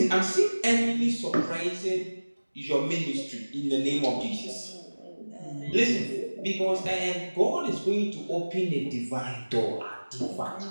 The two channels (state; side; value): inverted; both; correlation -1.00